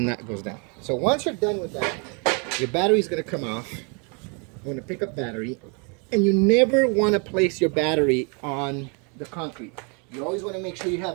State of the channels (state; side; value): quieter; left; 35.1 dB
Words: that goes down. So once you're done with that, your battery is going to come off. I'm going to pick up battery, and you never want to place your battery on the concrete. You always want to make sure you have